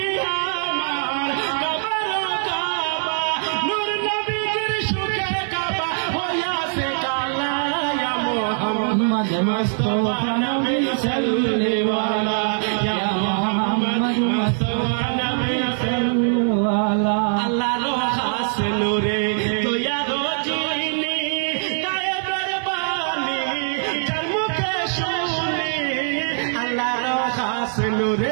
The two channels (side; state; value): left; silent; 58 dB below the other